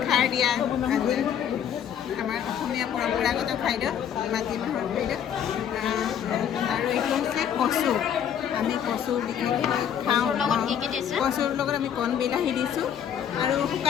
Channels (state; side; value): quieter; right; 9.0 dB